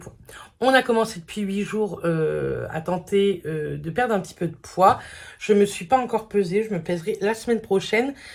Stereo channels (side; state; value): both; identical; correlation 1.00